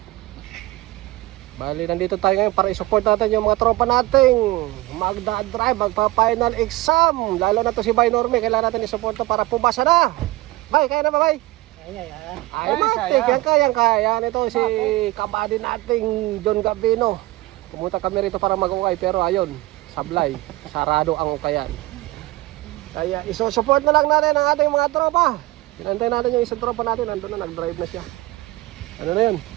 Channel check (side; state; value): left; quieter; 19.8 dB